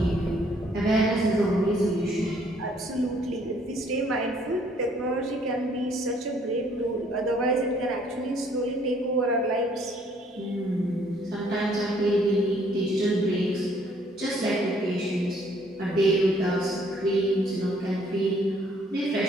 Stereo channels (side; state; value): both; normal; correlation 0.63